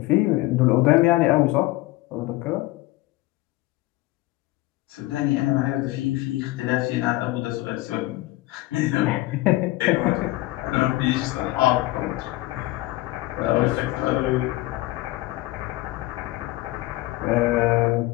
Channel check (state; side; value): quieter; right; 18.6 dB